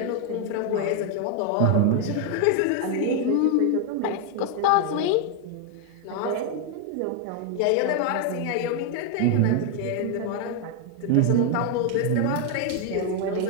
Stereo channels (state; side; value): different; both; correlation 0.01